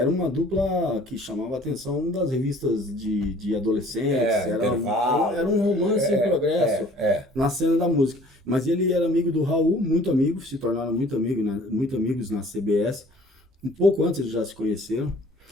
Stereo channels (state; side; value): normal; both; correlation 0.52